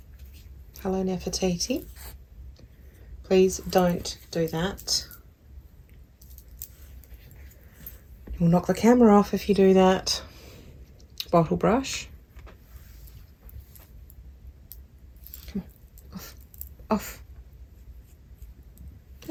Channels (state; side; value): identical; both; correlation 1.00